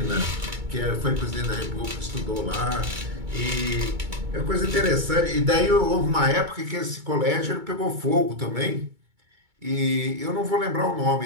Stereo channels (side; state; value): left; late; 2.2 ms